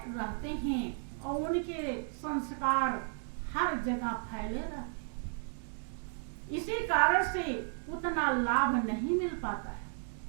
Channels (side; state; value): left; silent; 55 dB below the other